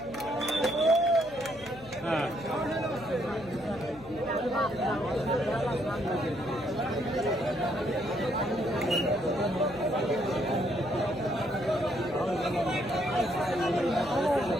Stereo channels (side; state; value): right; noise; hum, 22 dB below the sound